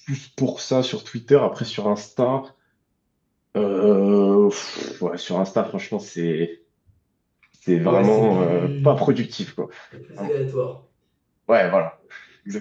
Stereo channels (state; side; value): identical; both; correlation 1.00